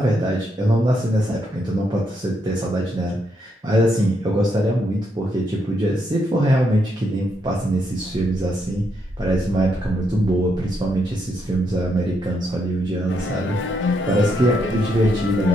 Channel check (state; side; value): normal; both; correlation 0.78